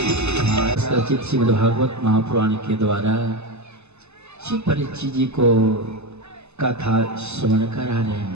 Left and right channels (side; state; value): left; late; 0.81 ms